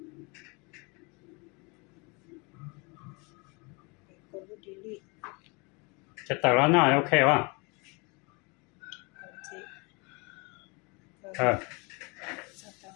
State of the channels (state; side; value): quieter; right; 29.6 dB